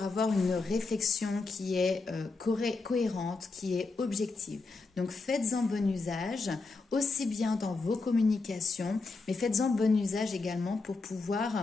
avoir une réflexion qui est cohérente, qui est objective. Donc faites-en bon usage, aussi bien dans vos communications, mais faites-en bon usage également pour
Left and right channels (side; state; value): right; quieter; 3.9 dB